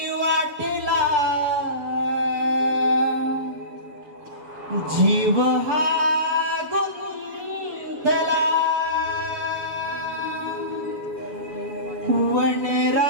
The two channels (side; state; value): left; late; 7.1 ms